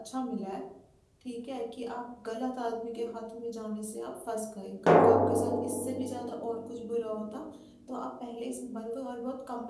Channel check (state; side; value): identical; both; correlation 1.00